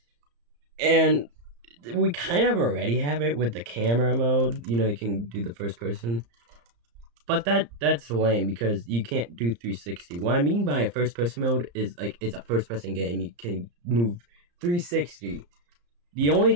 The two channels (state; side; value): late; left; 34 ms